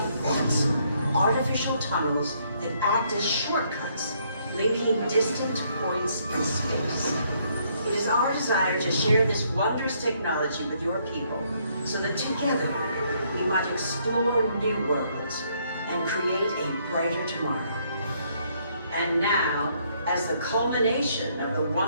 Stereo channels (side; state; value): both; inverted; correlation -0.70